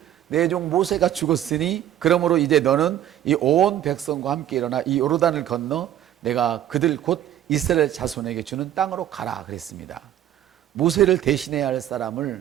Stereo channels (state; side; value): quieter; left; 11.7 dB